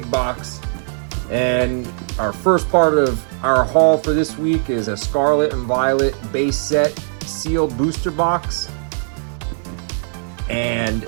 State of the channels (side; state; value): left; silent; 66 dB below the other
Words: box, and our first part of our haul for this week is a Scarlet and Violet base set sealed booster box and